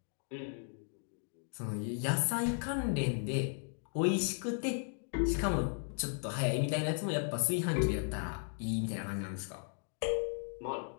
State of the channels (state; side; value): silent; right; 54 dB below the other